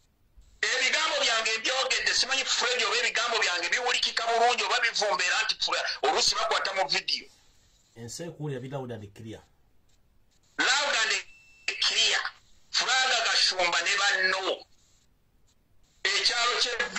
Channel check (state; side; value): identical; both; correlation 1.00